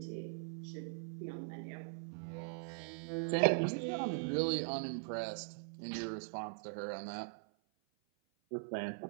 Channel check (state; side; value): silent; left; 50 dB below the other